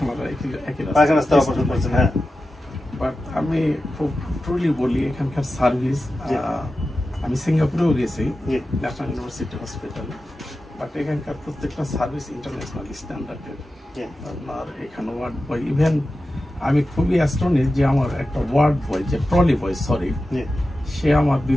পায়খানা রাস্তায় অপারেশন করেছেন? হ্যাঁ। বাট আমি খুব ট্রুলি বলি, এখানকার সার্ভিস, আমি সিঙ্গাপুরেও গেছি ন্যাশনাল ইউনিভার্সিটি হসপিটালে, বাট এখানকার প্রত্যেকটা সার্ভিস ইন্টারন্যাশনাল স্ট্যান্ডার্ডের। আপনার এখানে ওয়ার্ড বয়, ইভেন আমি খুবই অ্যাস্টনিশ যে আমার একটা ওয়ার্ড বয়, যে ট্রলি বয়, সরি, সে আমার 2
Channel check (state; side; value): normal; both; correlation 0.93